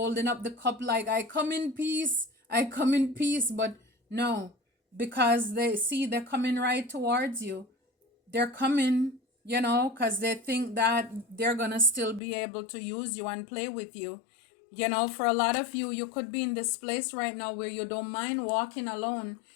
up the cup like, I come in peace, I come in peace. But no, because they see they're coming right towards you. They're coming, because they think that they're going to still be able to use you and play with you. For a lot of you, you could be in this place right now where you don't mind walking alone.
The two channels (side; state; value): right; drops out; at 12.2 s